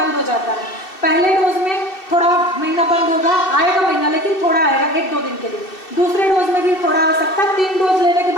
हो जाता है। पहले डोज में थोड़ा महीना बंद होगा, आएगा महीना, लेकिन थोड़ा आएगा 1-2 दिन के लिए। दूसरे डोज में भी थोड़ा आ सकता है। 3 डोज लेने के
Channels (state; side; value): late; right; 2.7 ms